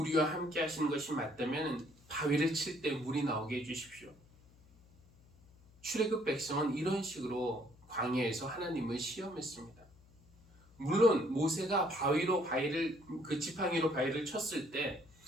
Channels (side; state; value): left; noise; hum, 27 dB below the sound